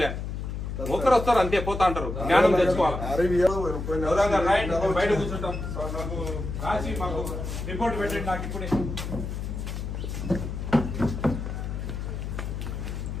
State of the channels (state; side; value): noise; left; hum, 5 dB below the sound